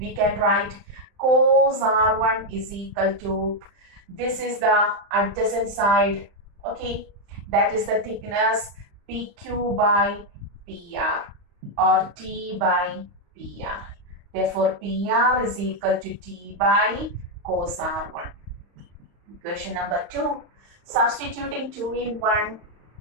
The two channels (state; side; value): late; left; 35 ms